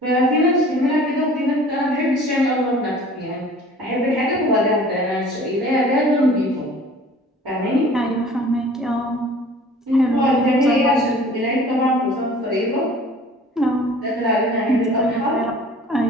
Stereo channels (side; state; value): both; normal; correlation 0.47